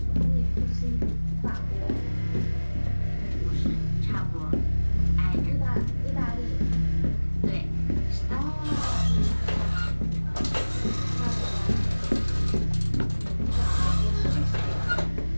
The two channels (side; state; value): both; inverted; correlation -1.00